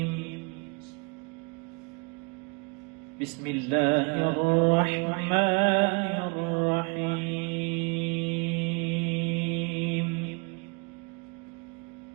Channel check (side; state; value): left; quieter; 31.3 dB